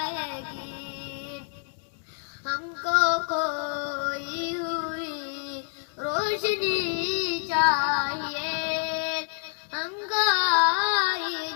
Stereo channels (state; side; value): quieter; right; 39.9 dB